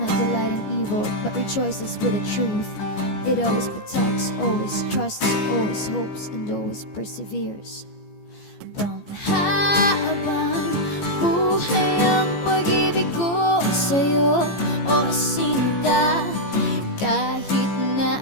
delight in evil, but rejoices with the truth. It always protects, always trusts, always hopes, and always perseveres. Panghabang buhay ang pag-ibig ko sa'yo, o sinta. Kahit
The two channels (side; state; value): right; late; 15 ms